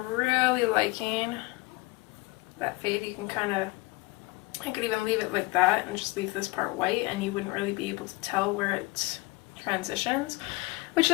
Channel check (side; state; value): right; quieter; 23.3 dB